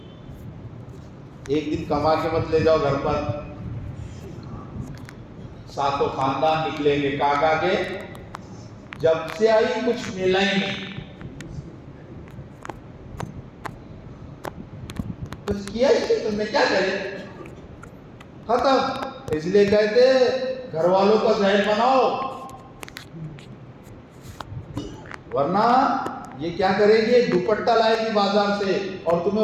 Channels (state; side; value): identical; both; correlation 1.00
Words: ایک دن کما کے مت لے جاؤ گھر پر, ساتوں خاندان نکلیں گے. کاکا کے جب سے آئی کچھ ملا ہی نہیں, کچھ کیا ہی نہیں, تم نے کیا کرے, ختم. اس لیے کہتے گھر والوں کا ذہن بناؤ, ورنہ یہ کیا کرے گی, دوپٹہ لائے گی بازار سے, اور تمہیں